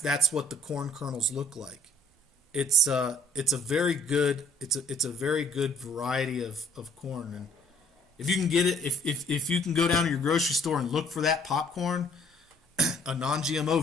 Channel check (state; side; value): normal; both; correlation 0.61